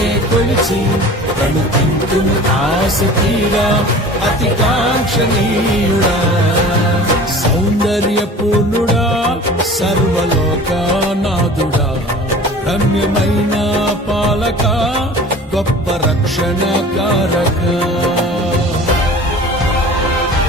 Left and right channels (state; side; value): normal; both; correlation 0.41